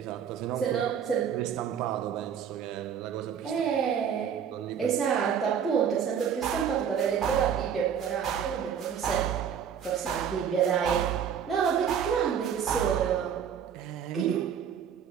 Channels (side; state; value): left; quieter; 8.0 dB